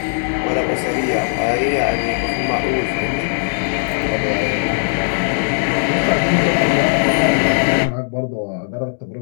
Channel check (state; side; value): silent; right; digital silence